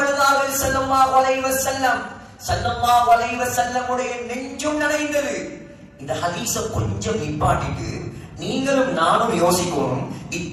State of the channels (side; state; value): both; identical; correlation 1.00